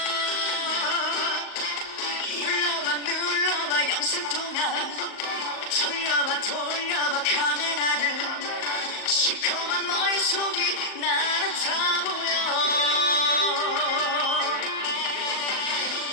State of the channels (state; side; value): late; right; 38 ms